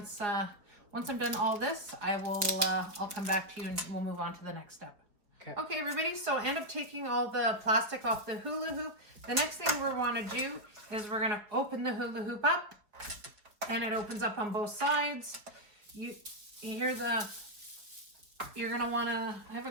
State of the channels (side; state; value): left; late; 4.5 ms